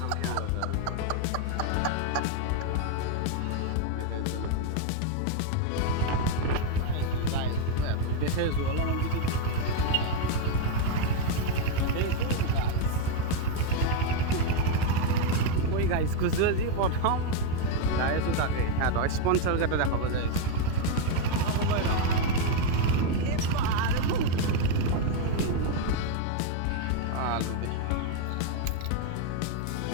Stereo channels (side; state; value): both; different; correlation 0.01